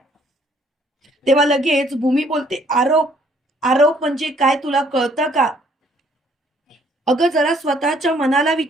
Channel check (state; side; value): normal; both; correlation 0.63